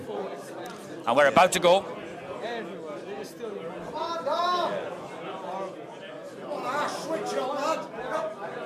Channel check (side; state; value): both; identical; correlation 1.00